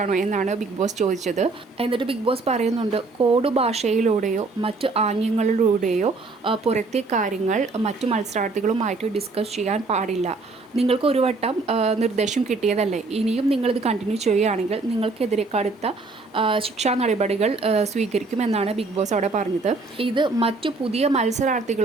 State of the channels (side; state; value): left; quieter; 3.7 dB